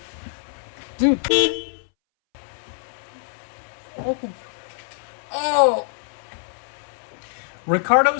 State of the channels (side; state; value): right; silent; 62 dB below the other